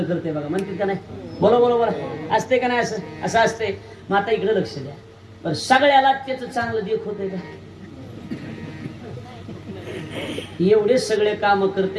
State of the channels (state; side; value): identical; both; correlation 1.00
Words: करते बघा म्हणतात का नाही. बरोबर असते का नाही असं असते. मग आता इकडे लक्ष द्या पण सगळ्याला त्याचं चांगलं देख होतंय का एवढे सगळे काम